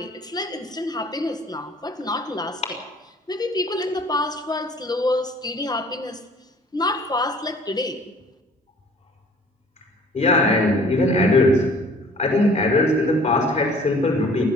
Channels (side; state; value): both; normal; correlation 0.53